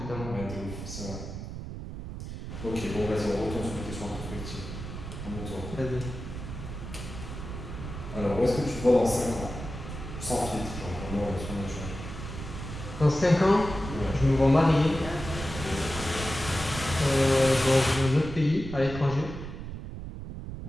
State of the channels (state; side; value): noise; right; rumble, 8 dB below the sound